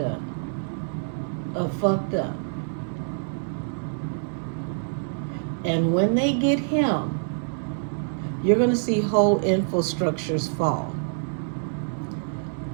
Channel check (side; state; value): left; silent; 61 dB below the other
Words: of fucked up. And when they get him, you're going to see whole infrastructures fall.